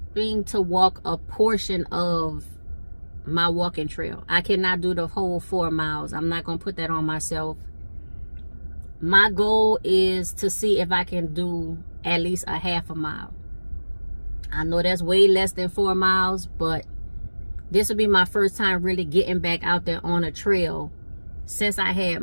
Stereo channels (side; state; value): both; inverted; correlation -1.00